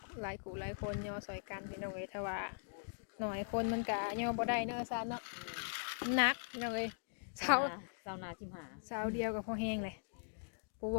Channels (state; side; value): silent; right; digital silence